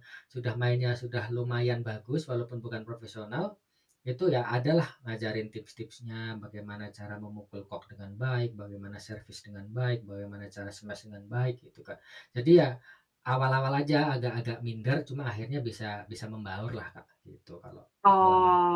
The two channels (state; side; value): identical; both; correlation 1.00